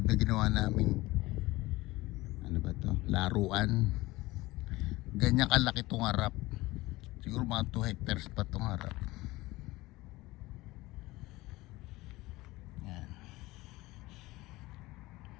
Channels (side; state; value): right; quieter; 19.6 dB